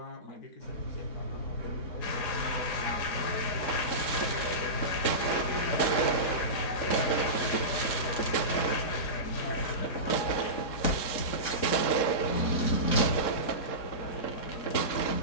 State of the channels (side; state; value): right; late; 3.7 ms